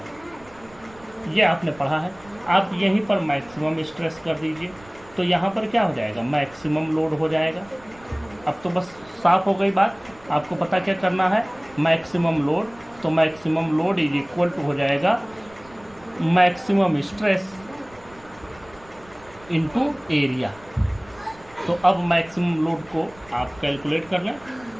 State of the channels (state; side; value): noise; right; rumble, 25 dB below the sound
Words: ये आपने पढ़ा है। आप यहीं पर मैक्सिमम स्ट्रेस कर दीजिए, तो यहाँ पर क्या हो जाएगा, मैक्सिमम लोड हो जाएगा। अब तो बस साफ हो गई बात। आपको पता क्या करना है, मैक्सिमम लोड। तो maximum load is equal to हो जाएगा मैक्सिमम स्ट्रेस इनटू एरिया। तो अब मैक्सिमम लोड को आप कैलकुलेट कर लें।